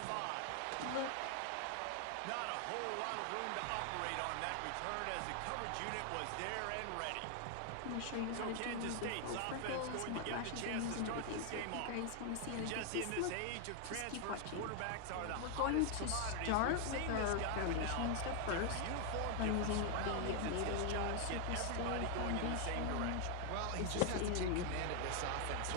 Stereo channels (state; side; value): different; both; correlation 0.00